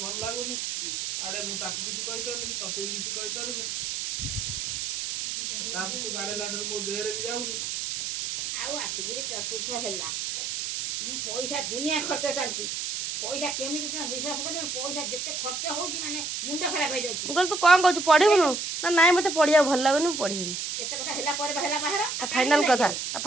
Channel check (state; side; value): noise; right; hiss, 3 dB below the sound